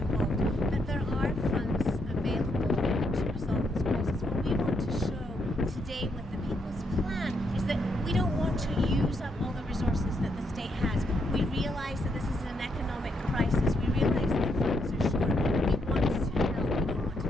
that there are funds available to resolve this crisis. What we want to show today with the People's Plan is that we don't want to use up all the resources that the state has. We realize that this is an economic crisis. We realize that funds are short. We want to help. We don't want to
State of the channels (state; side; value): normal; both; correlation 0.77